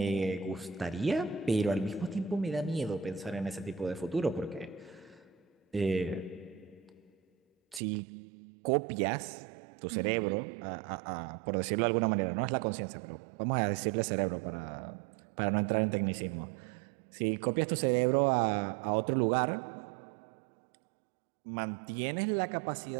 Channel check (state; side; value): drops out; left; at 7.8 s